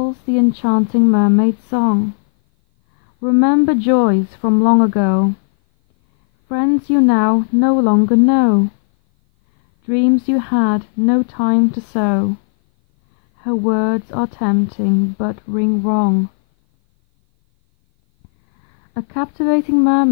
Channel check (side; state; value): right; silent; 58 dB below the other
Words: the enchanting mermaid song. Remember joys from long ago. Friends you now no longer know. Dreams you had no time to sow. Her words are tempting but ring wrong. A captivating